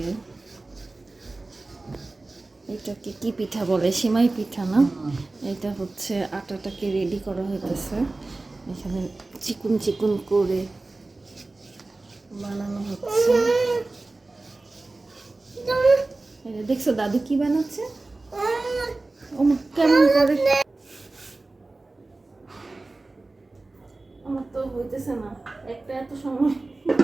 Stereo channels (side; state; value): left; quieter; 3.2 dB